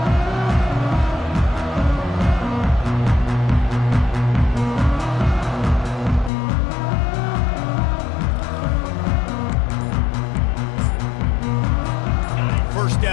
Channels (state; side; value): drops out; right; at 6.3 s